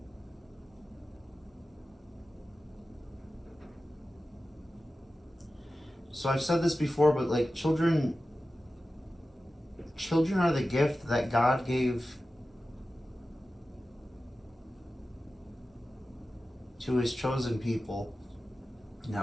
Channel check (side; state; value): both; normal; correlation 0.94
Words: So I've said this before, but like children are the gift that God gave to his chosen people in